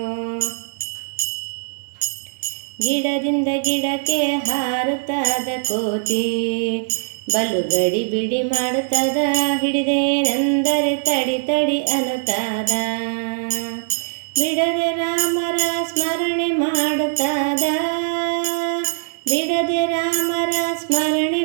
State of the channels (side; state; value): left; silent; digital silence